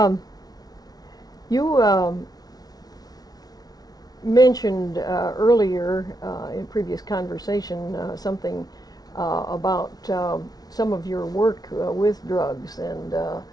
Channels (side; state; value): right; late; 0.19 ms